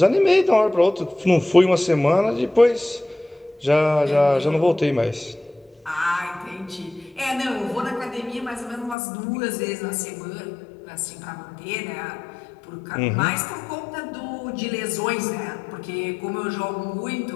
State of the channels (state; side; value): drops out; right; at 9.0 s